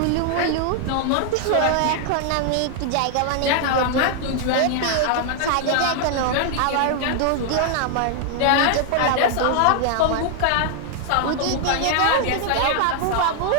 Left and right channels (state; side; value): different; both; correlation 0.00